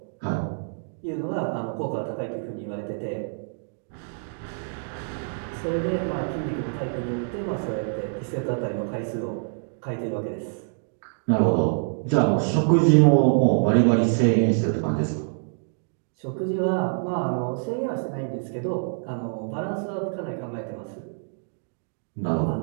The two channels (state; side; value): silent; left; digital silence